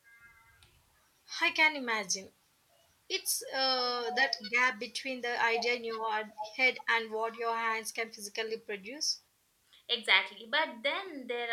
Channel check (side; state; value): both; identical; correlation 1.00